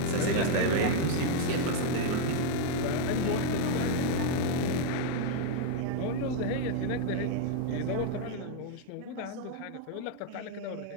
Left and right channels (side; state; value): both; different; correlation 0.00